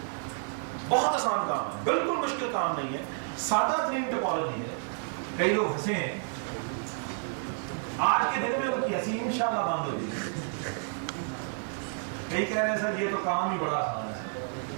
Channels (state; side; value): silent; left; 58 dB below the other